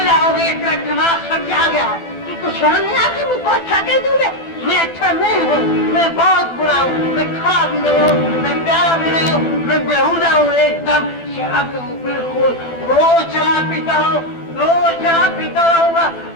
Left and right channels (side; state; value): right; late; 12 ms